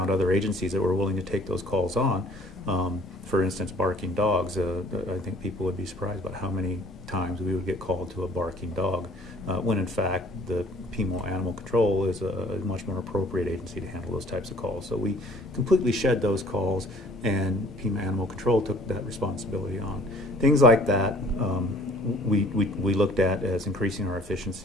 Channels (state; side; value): normal; both; correlation 0.55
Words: other agencies that were willing to take those calls on. For instance, barking dogs. I think people would be surprised about how many times we would get called to a barking dog, when in fact the PMO Animal Control is a much more appropriate agency to handle those types of calls. So we completely shed those calls, and PMO Animal Control took that responsibility on. Things like that we looked at as increasing our